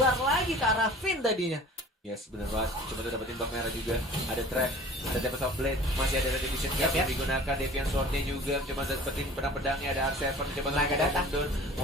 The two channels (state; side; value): normal; both; correlation 0.45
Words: lagi ke arah Finn tadinya. Yes, benar banget. Coba tuh dapetin bak merah juga. Ada trap, ada Tempest of Blade, masih ada Retribution Cap yang digunakan. Deviant Sword-nya juga coba dapetin pedang-pedangnya. Ada R7, coba Naga datang.